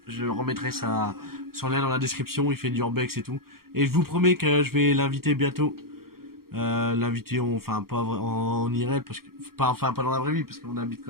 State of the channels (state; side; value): late; left; 0.93 ms